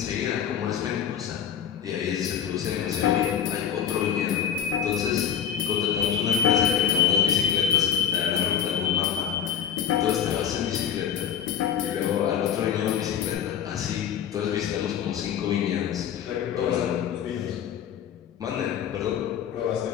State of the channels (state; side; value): quieter; right; 8.8 dB